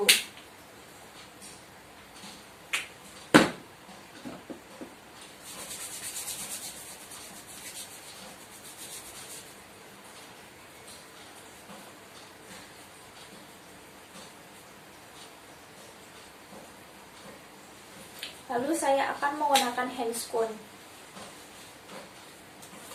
Lalu saya akan menggunakan handscoon.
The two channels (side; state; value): both; identical; correlation 1.00